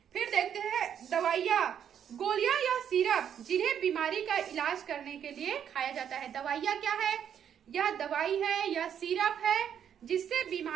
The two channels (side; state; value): left; quieter; 8.9 dB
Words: फिर देखते हैं दवाइयाँ, गोलियां या सिरप जिन्हें बीमारी का इलाज करने के लिए खाया जाता है। दवाइयाँ क्या है, यह दवाई है या सिरप है जिससे